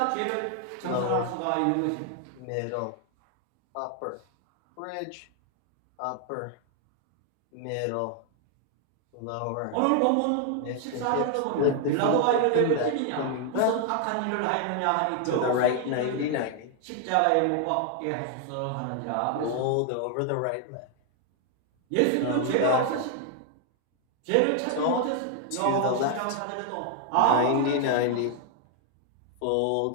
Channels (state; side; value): different; both; correlation 0.00